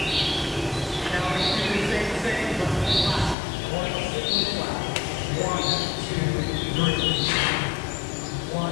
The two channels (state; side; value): drops out; right; at 3.4 s